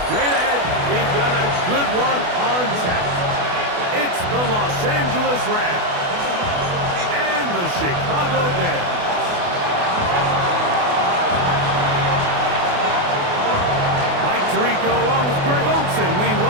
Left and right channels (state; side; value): late; left; 28 ms